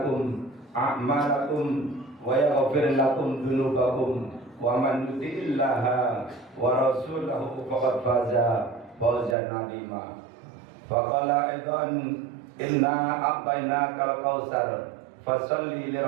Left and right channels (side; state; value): left; drops out; at 9.3 s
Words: أعمالكم ويغفر لكم ذنوبكم ومن يطع الله ورسوله فقد فاز فوزا عظيما فقال أيضا إنا أعطيناك الكوثر فصل